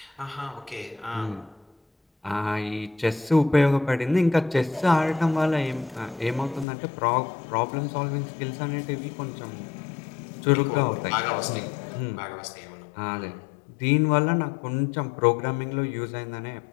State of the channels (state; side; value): drops out; right; at 6.7 s